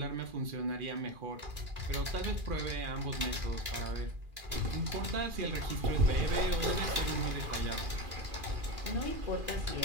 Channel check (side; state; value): left; late; 2.4 ms